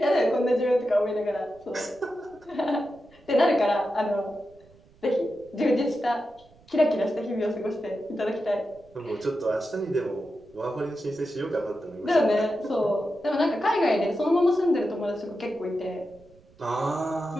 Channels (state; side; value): noise; right; rumble, 28 dB below the sound